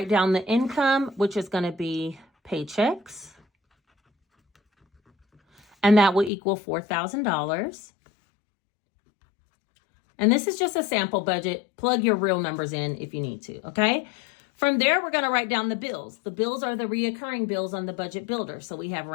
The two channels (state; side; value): drops out; right; at 6.3 s